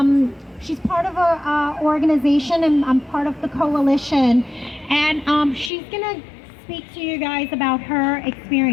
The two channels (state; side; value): drops out; right; at 5.7 s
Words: She's part of a organization, and I'm part of the coalition, and she's gonna speak to you guys about her